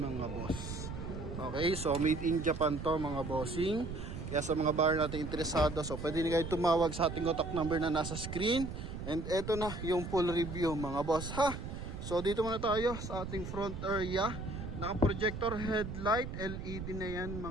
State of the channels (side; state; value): right; noise; rumble, 7 dB below the sound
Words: boss. Okay, so made in Japan to mga bossing. Kaya sa mga buyer natin interesado, so pwede nyo kayo tumawag sa ating contact number na nasa screen. And eto na yung full review mga boss ha. So dito muna tayo sa ating front area. Naka projector headlight, LED na yan